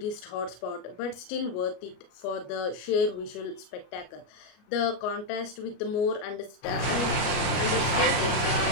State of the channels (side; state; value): right; late; 33 ms